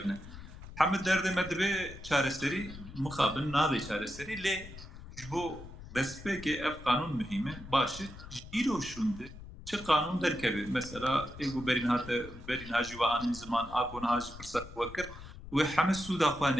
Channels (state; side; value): noise; left; rumble, 14 dB below the sound